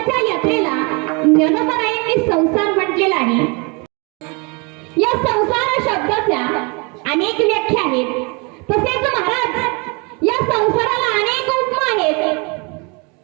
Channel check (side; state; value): left; quieter; 30.7 dB